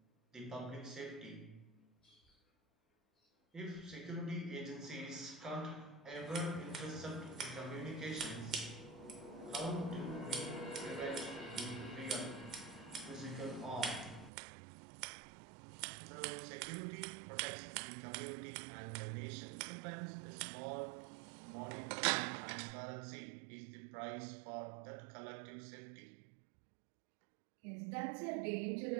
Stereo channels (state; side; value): drops out; left; at 14.3 s